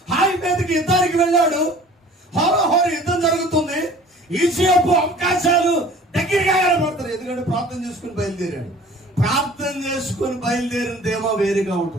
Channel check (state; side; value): normal; both; correlation 0.47